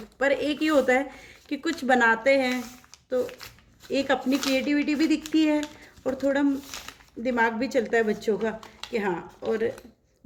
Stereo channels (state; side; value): identical; both; correlation 1.00